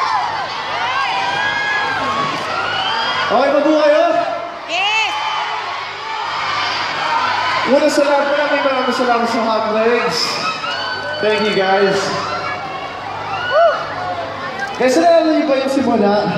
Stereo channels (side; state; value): both; identical; correlation 1.00